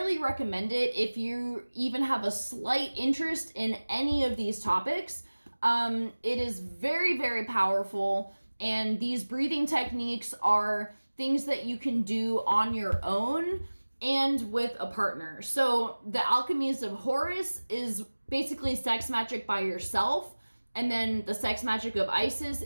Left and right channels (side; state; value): both; inverted; correlation -1.00